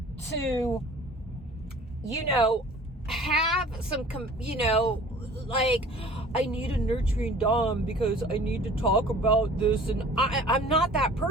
to you know, have some, you know, like, I need a nurturing dom because I need to talk about this. And I'm not that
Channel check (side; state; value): both; normal; correlation 0.47